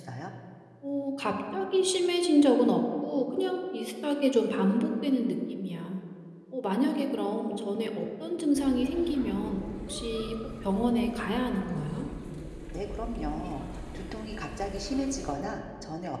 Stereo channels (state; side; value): identical; both; correlation 1.00